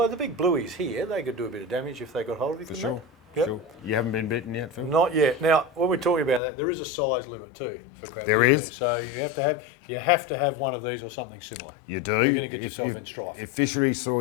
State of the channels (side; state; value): right; drops out; at 6.4 s